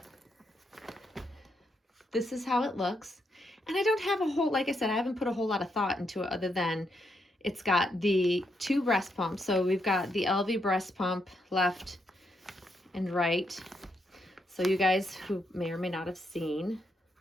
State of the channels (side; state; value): both; normal; correlation 0.79